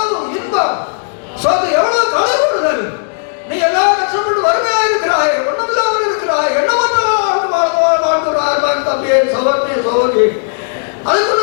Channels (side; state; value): right; silent; digital silence